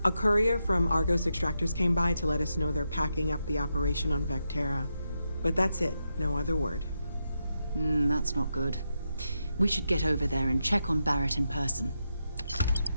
A courier from Argos Extractors came by to let us know they're packing up the operation on Vectera. But that's it, no other word. That's not good. We should get over there and check on Barrett in person.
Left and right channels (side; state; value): both; inverted; correlation -0.85